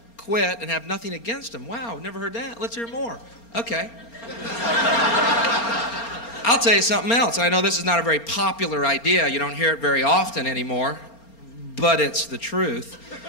quit, and have nothing against them. Wow, never heard that. Let's hear more. Okay. I'll tell you something else. I know this is not a very popular idea. You don't hear it very often anymore, but it's the truth.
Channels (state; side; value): late; right; 4.3 ms